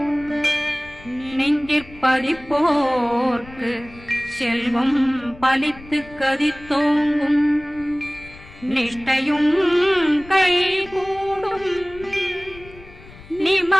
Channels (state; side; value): noise; left; rumble, 20 dB below the sound